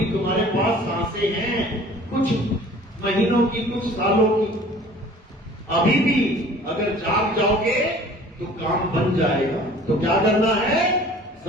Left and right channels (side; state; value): both; normal; correlation 0.48